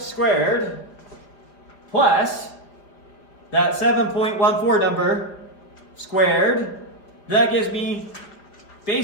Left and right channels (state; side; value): late; right; 4.9 ms